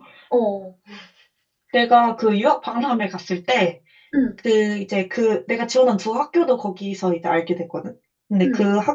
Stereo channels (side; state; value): both; identical; correlation 1.00